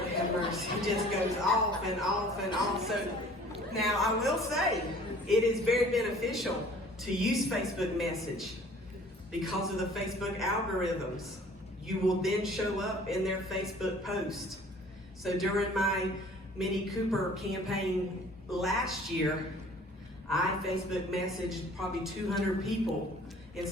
have mercy, it just goes off and off and off. So now I will say, it is very beneficial to use Facebook message because of the Facebook algorithms. You will then show up in their Facebook post. So during my Mini Cooper campaign last year, I Facebook messaged probably 200 people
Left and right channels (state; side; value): normal; both; correlation 0.51